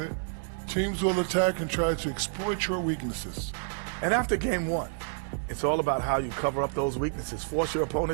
Teams will attack and try to exploit your weaknesses. And after game one, it's all about how you cover up those weaknesses. Force your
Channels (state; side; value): silent; left; digital silence